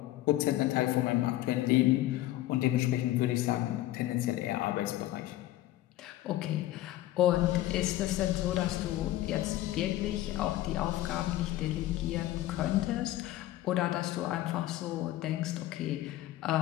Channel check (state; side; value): quieter; right; 15.1 dB